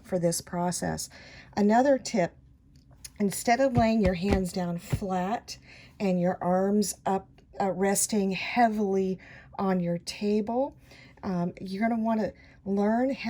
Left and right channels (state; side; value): identical; both; correlation 1.00